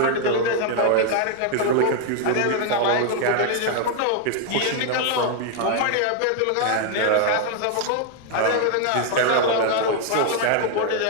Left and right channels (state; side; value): different; both; correlation 0.00